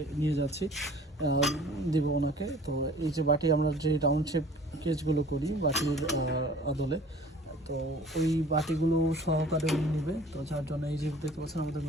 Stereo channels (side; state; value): both; normal; correlation 0.48